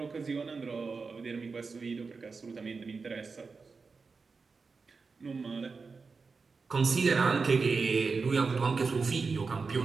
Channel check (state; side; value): quieter; left; 4.6 dB